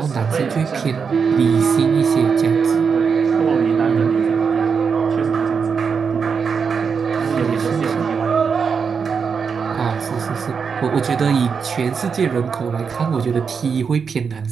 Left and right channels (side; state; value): left; quieter; 5.9 dB